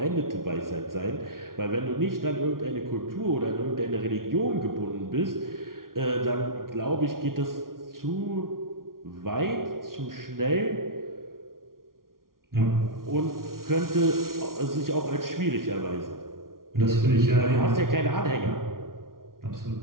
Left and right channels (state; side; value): late; left; 0.92 ms